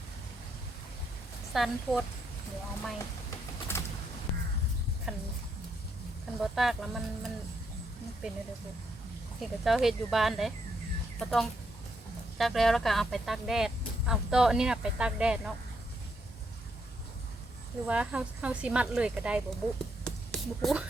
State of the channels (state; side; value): normal; both; correlation 0.77